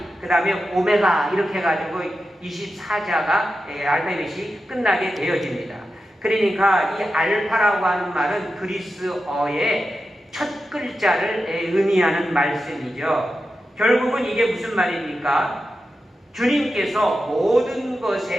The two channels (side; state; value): both; normal; correlation 0.90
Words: 그 다음에 오메가 이렇게 해가지고 24자가 알파벳이 끝나게 되어집니다. 그러니까 이 알파라고 하는 말은 그리스어의 첫 글자를 의미하는 말씀이죠. 결국은 이게 무슨 말입니까? 주님께서 모든